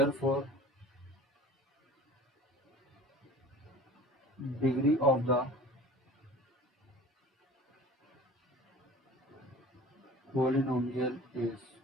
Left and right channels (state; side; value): normal; both; correlation 0.43